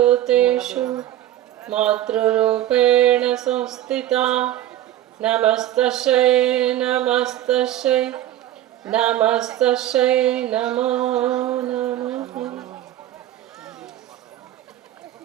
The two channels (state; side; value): quieter; left; 13.1 dB